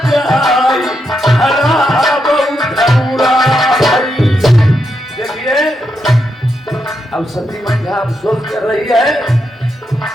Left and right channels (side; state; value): both; normal; correlation 0.82